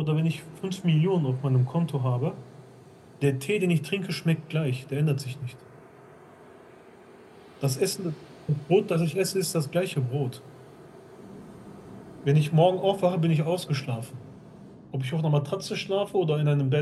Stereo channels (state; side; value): identical; both; correlation 1.00